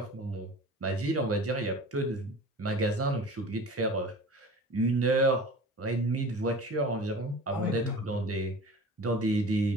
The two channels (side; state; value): both; normal; correlation 0.39